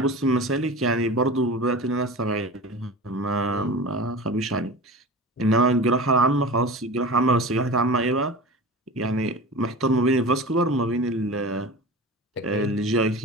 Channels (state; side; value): normal; both; correlation 0.33